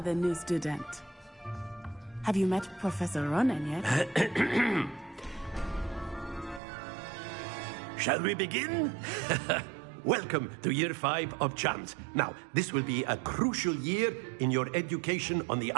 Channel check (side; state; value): left; drops out; at 6.6 s